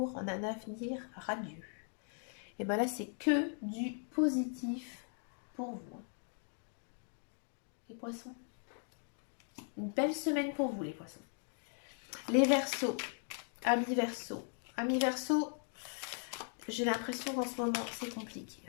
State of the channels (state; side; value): silent; right; 52 dB below the other